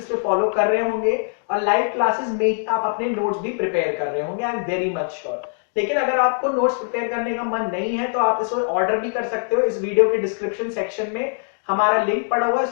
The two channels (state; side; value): silent; right; digital silence